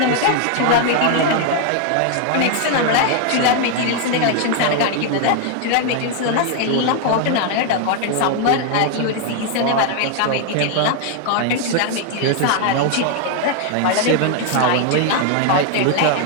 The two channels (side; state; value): both; different; correlation 0.00